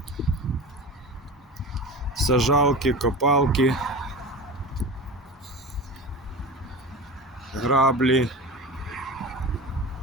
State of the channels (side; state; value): both; normal; correlation 0.30